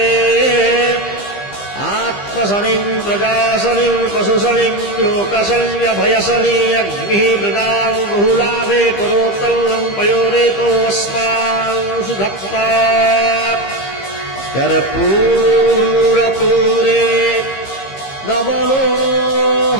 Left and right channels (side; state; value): right; late; 15 ms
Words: आत्मसनिं प्रजासनिं पशुसनिं लोकसन्यभयसनि अग्निः मृदां बहुलाभे करोत्तल्लं पयोरेतो अस्मान् सुधत्ता कर्पूरपूरे नवलो